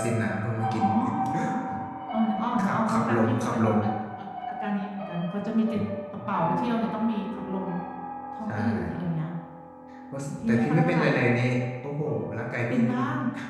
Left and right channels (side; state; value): both; identical; correlation 1.00